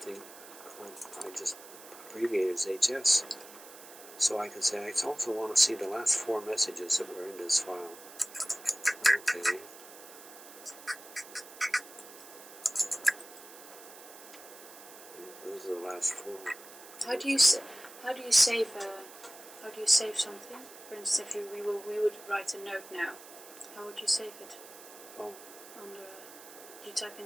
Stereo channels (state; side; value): noise; right; hiss, 17 dB below the sound